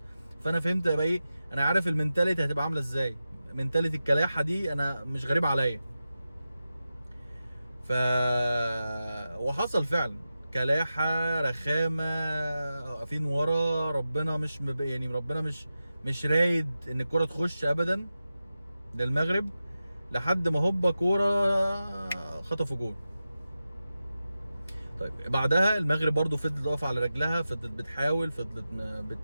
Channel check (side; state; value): both; inverted; correlation -0.92